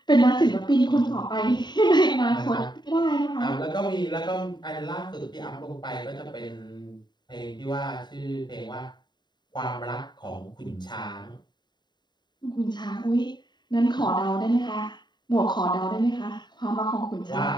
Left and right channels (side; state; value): right; late; 0.21 ms